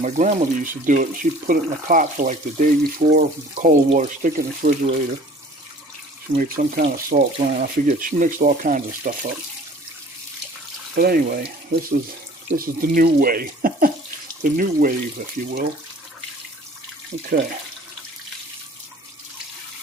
grandmother used to do it. She'd put it in a pot for like the day before, cold water, stick it in the refrigerator. She made some kind of salt brine. I forget. She mixed all kinds of stuff up. But anyway, this is the new way, the new wave, if you will. Okay.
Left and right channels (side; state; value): both; normal; correlation 0.49